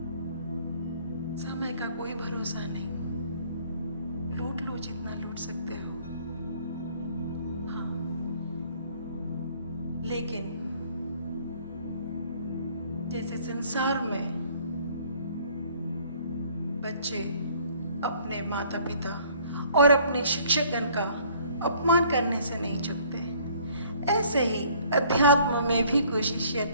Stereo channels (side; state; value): both; inverted; correlation -0.58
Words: समय का कोई भरोसा नहीं, लूट लो जितना लूट सकते हो। हाँ, लेकिन जैसे संसार में बच्चे अपने माता पिता और अपने शिक्षकगण का अपमान करने से नहीं चूकते, ऐसे ही अध्यात्म में भी कोई शिष्य